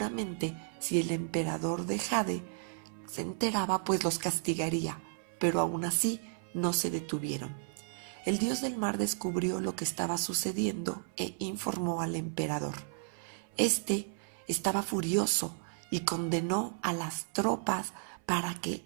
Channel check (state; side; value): silent; left; 55 dB below the other